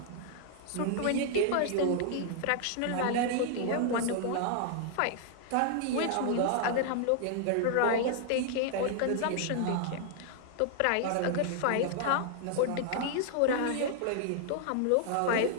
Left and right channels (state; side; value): different; both; correlation 0.00